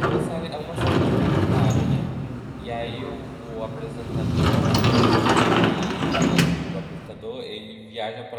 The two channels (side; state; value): both; identical; correlation 1.00